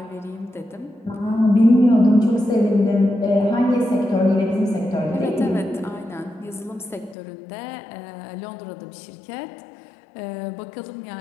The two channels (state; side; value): drops out; right; at 7.2 s